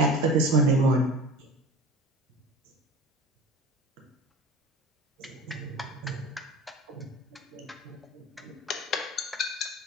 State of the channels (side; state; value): both; normal; correlation 0.36